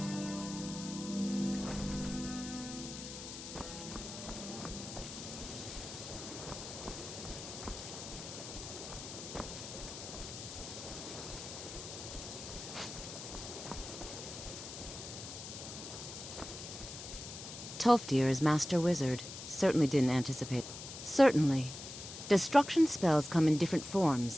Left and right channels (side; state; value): left; noise; hiss, 10 dB below the sound